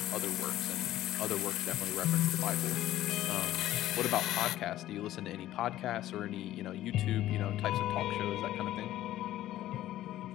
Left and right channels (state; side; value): quieter; right; 14.0 dB